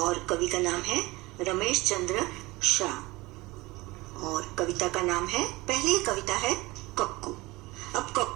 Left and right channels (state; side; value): quieter; left; 20.9 dB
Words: कवि का नाम है रमेश चंद्र शाह और कविता का नाम है, पहली कविता है कक्कू। अब